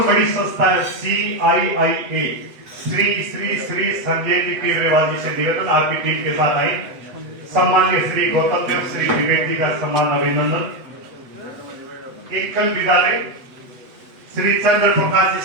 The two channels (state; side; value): late; left; 8.0 ms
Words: बड़ी संस्था है CIIA, श्री संजय जी केजरीवाल जी से निवेदन, आपकी टीम के साथ आई। सम्मान्य श्री गौतम देव श्री विवेक जी का सम्मान अभिनंदन। एकल विद्यालय श्री चंद्र प्रकाश जी